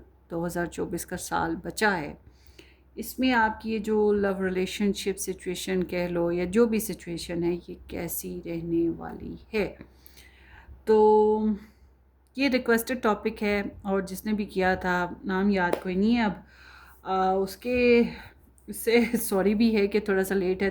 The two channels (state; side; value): identical; both; correlation 1.00